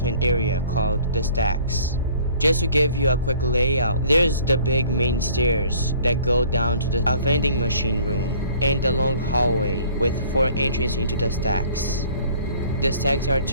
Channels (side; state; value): both; inverted; correlation -0.54